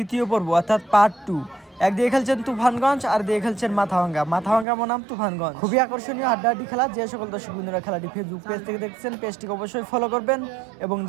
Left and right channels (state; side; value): drops out; left; at 4.7 s